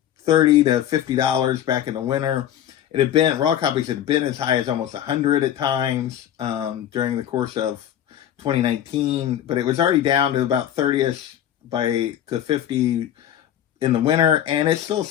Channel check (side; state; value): right; quieter; 10.9 dB